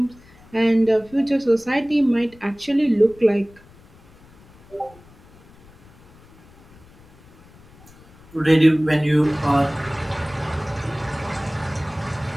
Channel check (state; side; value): noise; left; rumble, 26 dB below the sound